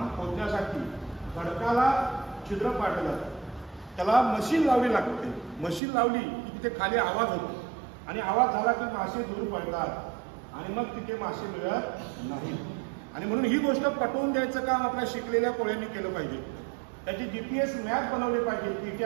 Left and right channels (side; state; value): left; drops out; at 5.8 s